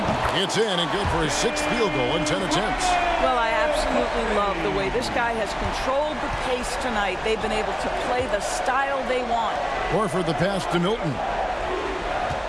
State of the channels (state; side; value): identical; both; correlation 1.00